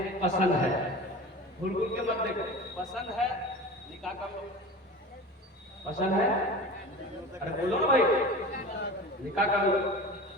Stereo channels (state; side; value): normal; both; correlation 0.34